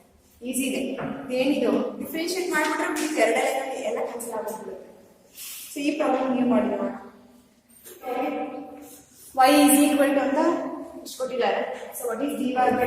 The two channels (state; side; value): identical; both; correlation 1.00